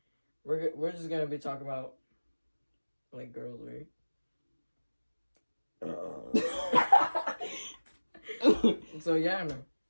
We're just gonna be talking about, like, girls, right? So, yeah, man.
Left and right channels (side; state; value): both; inverted; correlation -1.00